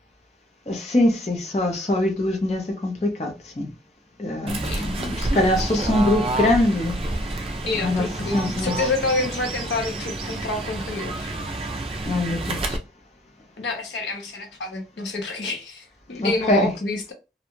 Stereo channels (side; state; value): both; normal; correlation 0.57